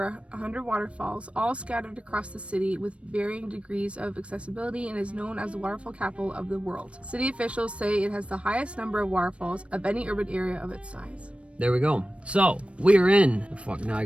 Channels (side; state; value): left; late; 0.061 ms